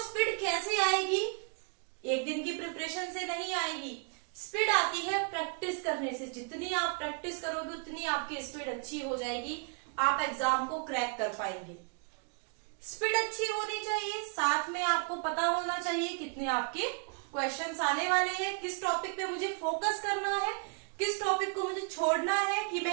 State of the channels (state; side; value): quieter; left; 37.0 dB